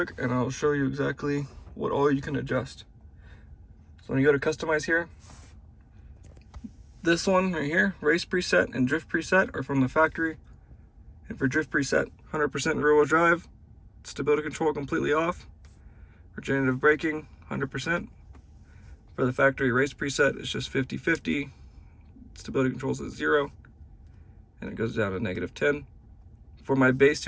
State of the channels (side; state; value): both; identical; correlation 1.00